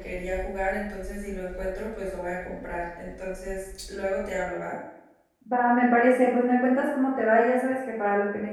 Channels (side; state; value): both; identical; correlation 1.00